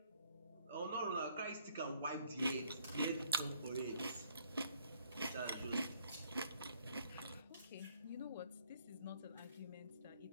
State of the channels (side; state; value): both; inverted; correlation -0.65